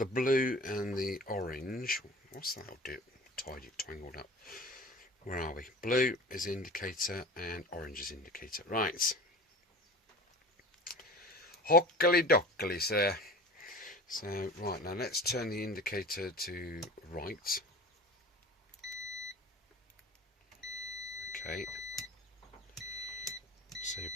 blue and the orange. What's that? I'll do it tangled up. Where are we? Blue is indicator and orange is indicator. Right. Hockily dockily, sir. So, right, now let's turn the indicator to right. Okay. So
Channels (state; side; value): normal; both; correlation 0.38